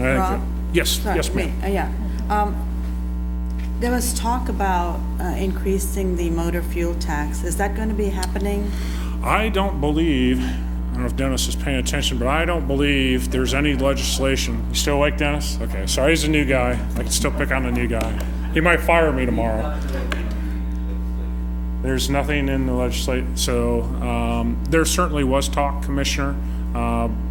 I think Rob? that- Yes, Sorry, yes, ma'am. Yeah. There was talk about increasing the motor fuel tax. Is that going to be happening? I don't believe, I don't know if Dennis is paying attention, but I don't believe there's any legislation. You still awake, Dennis? Okay, sorry, he's a new guy. I can still pick on the new guy. He might fire me tomorrow. There's nothing in the legislation, so there certainly was talk, Commissioner,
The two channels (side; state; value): both; identical; correlation 1.00